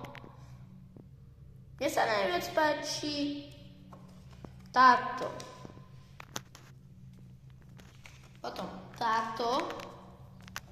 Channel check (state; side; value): identical; both; correlation 1.00